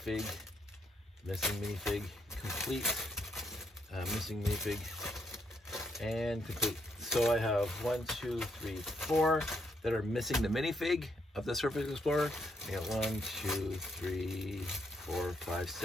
Missing minifig, and complete. So I have 1, 2, 3, 4 that are missing the minifig of the Surface Explorer. I got 1, 2, 3, 4, 5,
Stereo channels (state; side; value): normal; both; correlation 0.75